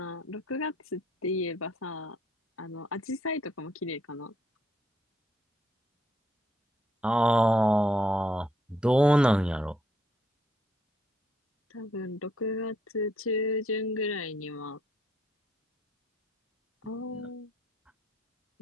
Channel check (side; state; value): both; normal; correlation 0.71